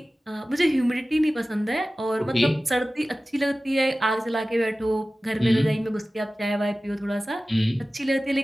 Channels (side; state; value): both; normal; correlation 0.96